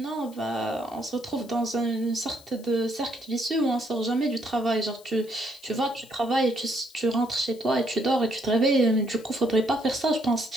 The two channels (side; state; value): left; noise; hiss, 24 dB below the sound